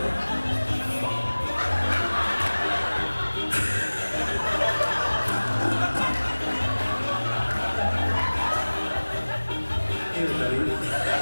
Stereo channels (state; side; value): inverted; both; correlation -1.00